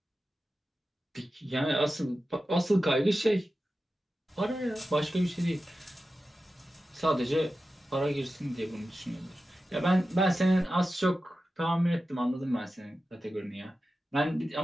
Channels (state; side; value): normal; both; correlation 0.93